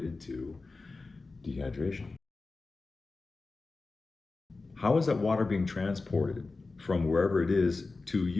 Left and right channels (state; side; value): quieter; right; 3.7 dB